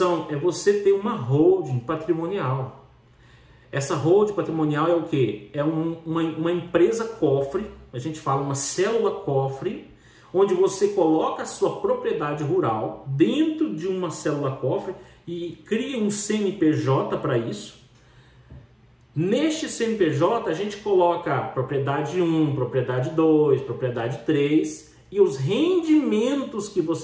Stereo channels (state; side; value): identical; both; correlation 1.00